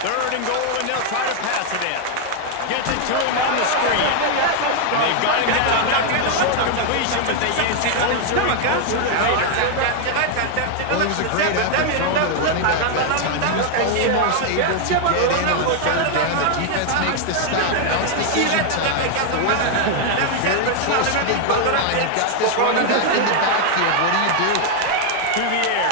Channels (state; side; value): different; both; correlation 0.00